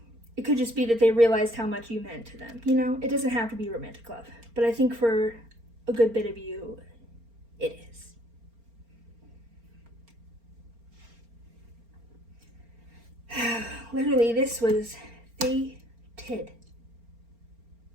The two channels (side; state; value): left; late; 4.4 ms